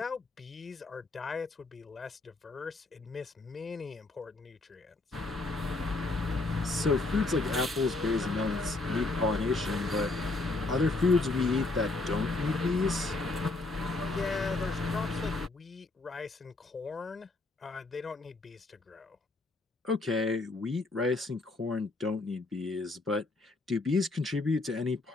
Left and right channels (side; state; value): right; quieter; 3.2 dB